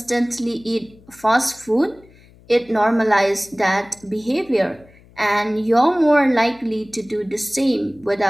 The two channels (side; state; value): left; noise; hum, 26 dB below the sound